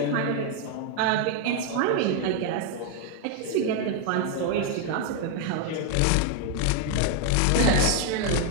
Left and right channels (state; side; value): different; both; correlation 0.00